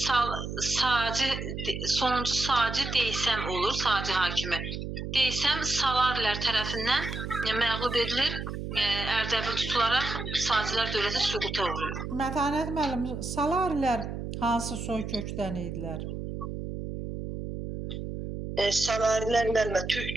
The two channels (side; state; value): right; noise; hum, 6 dB below the sound